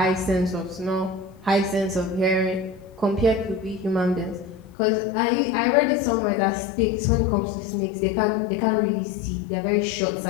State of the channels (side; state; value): right; drops out; at 4.8 s